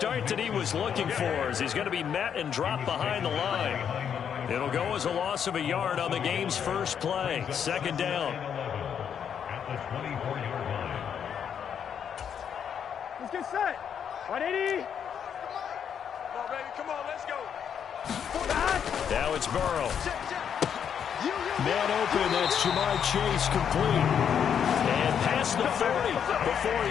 that he was looking for, as he's going to be met and dropped behind the line. It'll go as a loss of a yard on the game's first play. Second down. Let's get set. 180. Come on, baby. Come on, let's go. Now it's Burrow. Man open, that's Jamar Chase complete. And past the 40 before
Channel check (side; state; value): right; quieter; 8.1 dB